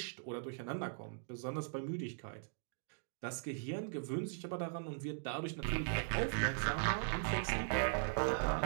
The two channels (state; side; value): silent; left; digital silence